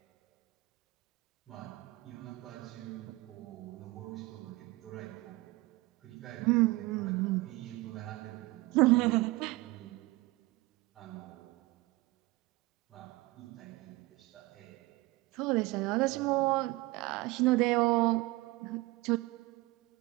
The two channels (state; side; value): quieter; left; 21.4 dB